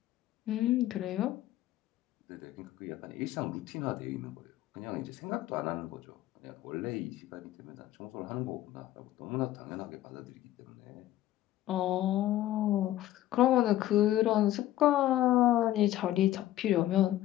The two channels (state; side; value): quieter; right; 14.1 dB